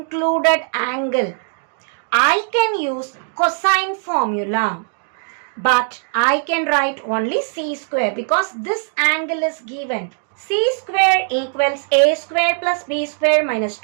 angle, I can use cosine formula. But I can write only c square because this angle is given. C square equals a square plus b square minus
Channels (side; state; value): left; silent; 56 dB below the other